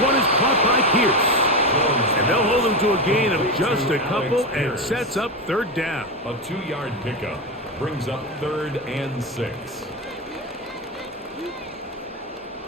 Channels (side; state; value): both; normal; correlation 0.15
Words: is caught by Pierce. And they'll hold him to a gain of just a couple and sets up 3rd down. A 2-yard pickup brings up 3rd and 6.